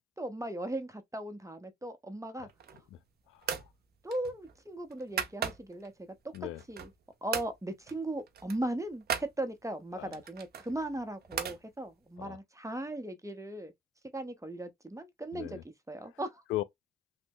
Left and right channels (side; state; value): both; normal; correlation 0.58